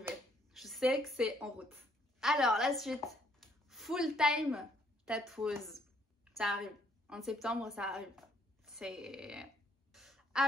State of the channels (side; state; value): both; normal; correlation 0.67